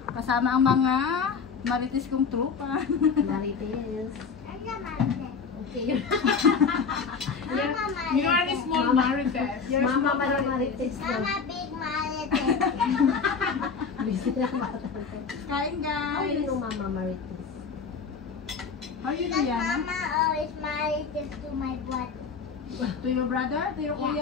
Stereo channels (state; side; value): quieter; right; 5.5 dB